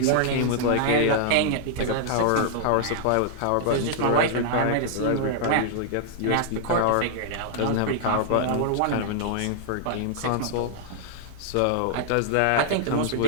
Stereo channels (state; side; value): different; both; correlation -0.01